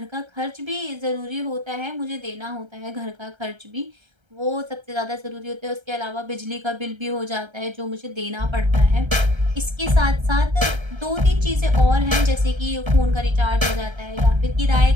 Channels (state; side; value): late; left; 1.3 ms